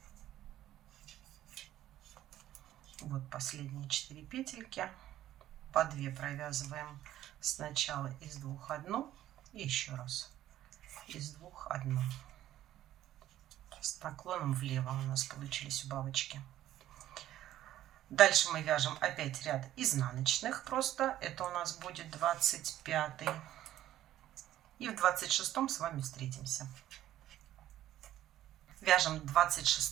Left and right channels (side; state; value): left; quieter; 13.1 dB